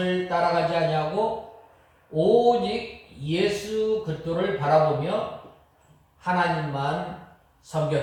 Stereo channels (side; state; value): both; identical; correlation 1.00